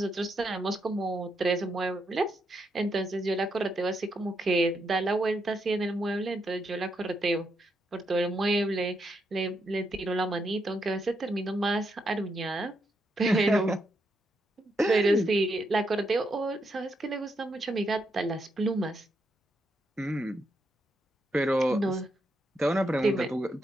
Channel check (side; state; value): both; normal; correlation 0.80